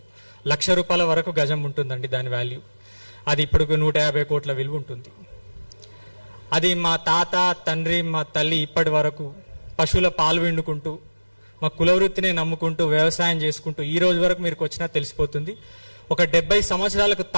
₹1,00,000 వరకు గజం ఉంటుందండి దాని వాల్యూ. అది ఇప్పుడు 150 కోట్ల విలువ ఉంటుంది. అది మా తాత తండ్రి మా తల్లి ఇప్పటి వరకు పశువుల పాలు విండుకుంటూ మా కులవృత్తినే నమ్ముకుంటూ వ్యవసాయం చేసుకుంటూ ఈ రోజు వరకు మీరు వచ్చినా తెలిసిపోతుంది. ఒక 70 సంవత్సరాలకు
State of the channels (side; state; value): both; inverted; correlation -1.00